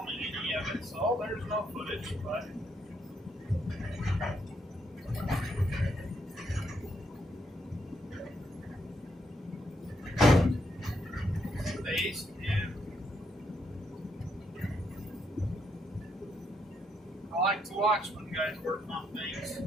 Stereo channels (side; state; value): both; normal; correlation 0.77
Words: any of it, so there's no footage, but days, and I like to watch when guys work on things.